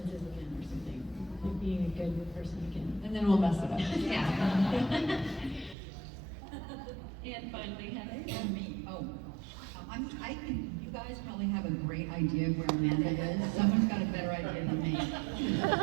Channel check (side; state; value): left; drops out; at 5.8 s